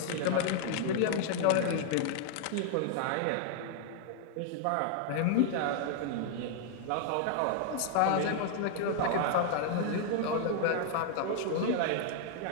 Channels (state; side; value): different; both; correlation 0.00